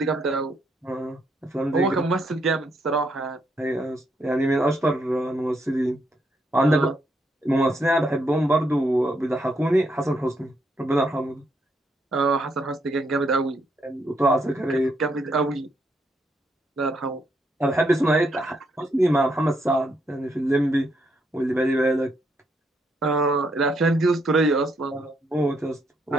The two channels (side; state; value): both; normal; correlation 0.76